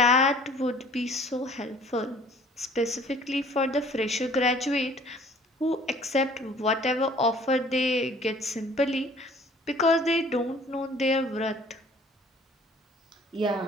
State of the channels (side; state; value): both; normal; correlation 0.53